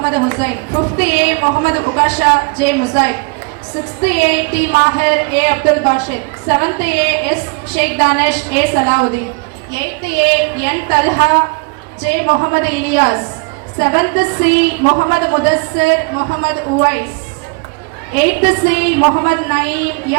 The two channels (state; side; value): quieter; left; 32.0 dB